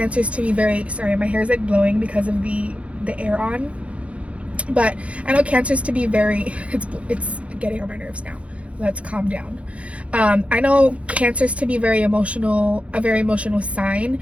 to be very, sorry, my hair is like blowing because of the air on. But I know Cancers to be very, it's getting on my nerves now. Let's calm down. I know Cancers to be very emotional, a very emotional sign.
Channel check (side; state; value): left; late; 0.063 ms